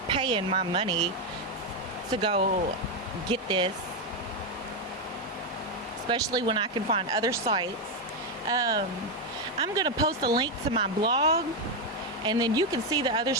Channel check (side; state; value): both; normal; correlation 0.05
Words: paying my money to go get this, especially when I can find other sites. I'm gonna post a link to my blog, and then you can see the other